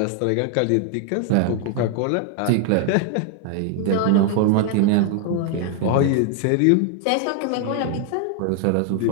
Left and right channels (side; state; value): both; different; correlation 0.00